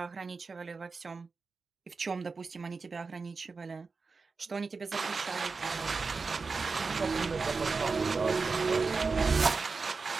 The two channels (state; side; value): quieter; left; 4.4 dB